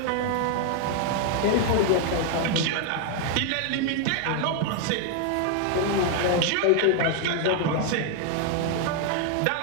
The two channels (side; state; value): both; different; correlation 0.00